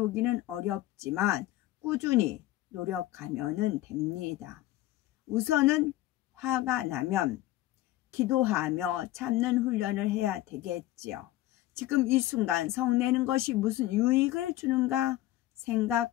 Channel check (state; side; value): quieter; right; 15.7 dB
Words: 어렵지만 꾸준히 노력하면 됩니다. 우선은 화가 나면 기도하며 참는 훈련을 해야 되겠지요. 지금 이 순간 성내는 것이 무슨 유익을 주는가